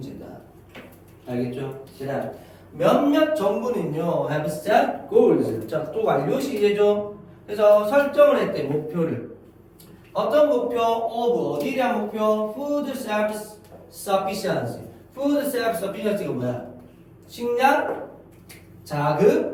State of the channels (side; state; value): both; identical; correlation 1.00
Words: 알겠죠? 그다음 몇몇 정부는요 have set goals. 자, 또 완료 시제죠. 그래서 설정을 했대 목표를. 어떤 목표? 어디에 대한 목표? Food self-sufficiency. Food self-sufficiency가 뭐야? 식량,